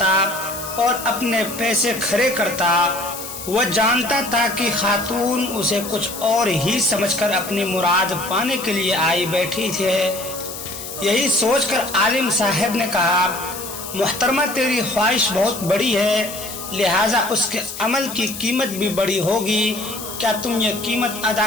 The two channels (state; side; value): noise; left; hiss, 10 dB below the sound